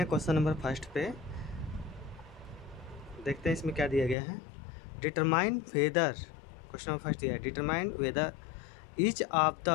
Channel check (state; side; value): drops out; right; at 4.2 s